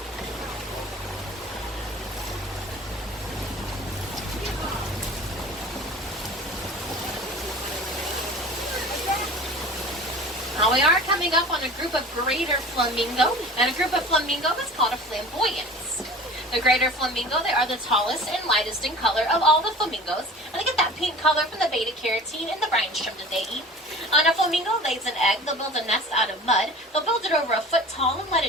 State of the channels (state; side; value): normal; both; correlation 0.40